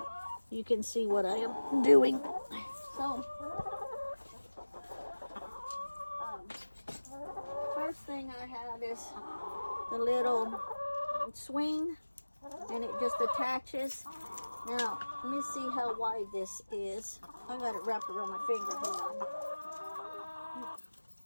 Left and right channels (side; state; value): both; inverted; correlation -1.00